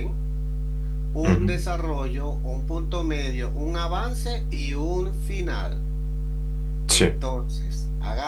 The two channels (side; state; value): both; identical; correlation 1.00